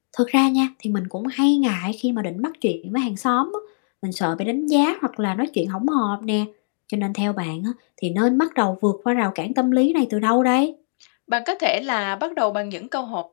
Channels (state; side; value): silent; right; 64 dB below the other